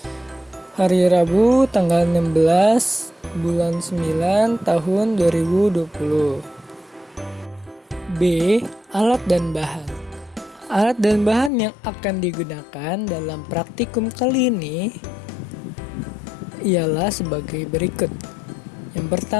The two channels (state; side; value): drops out; right; at 11.5 s